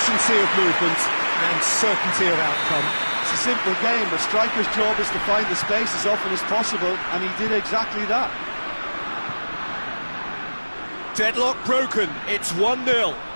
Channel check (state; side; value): inverted; both; correlation -1.00